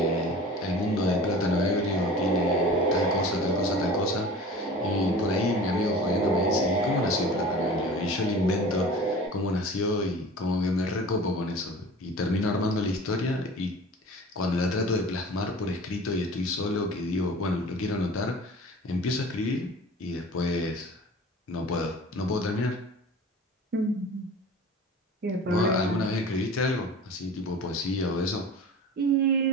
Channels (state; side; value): normal; both; correlation 0.39